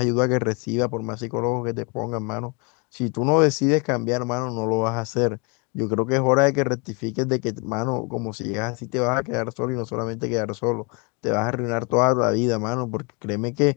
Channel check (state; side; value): quieter; right; 32.2 dB